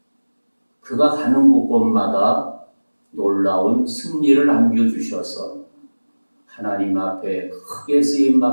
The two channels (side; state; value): both; inverted; correlation -1.00